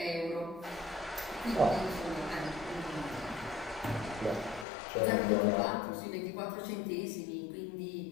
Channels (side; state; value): right; drops out; at 4.7 s